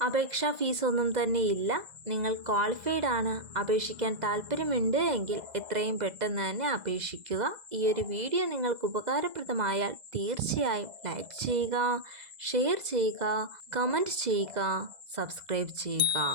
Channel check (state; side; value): late; left; 2.0 ms